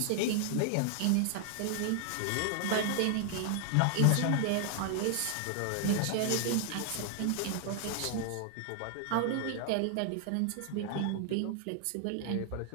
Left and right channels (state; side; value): different; both; correlation 0.00